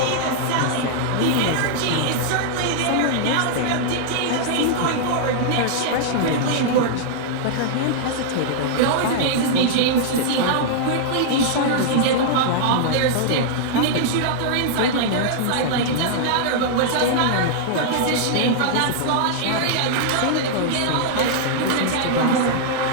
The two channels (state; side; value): different; both; correlation -0.01